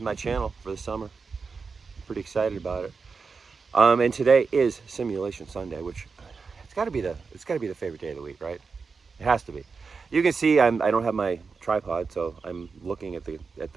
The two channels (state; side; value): quieter; left; 4.9 dB